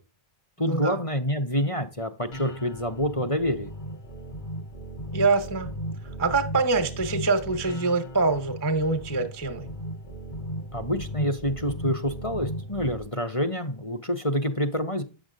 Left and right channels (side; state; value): right; late; 1.5 ms